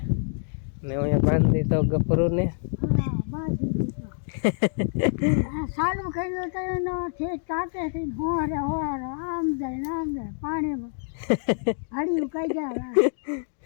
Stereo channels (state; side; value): silent; right; digital silence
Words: ને અહીંયા બાંધી તો ગફરું ને ચાલુ કર્યું તો એનો તાકેથી હોરે આમ જાય પાણીમાં હળિયું કઈ જાય